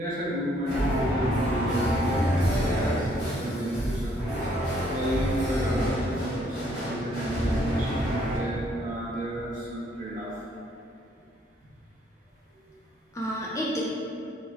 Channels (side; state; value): both; normal; correlation 0.67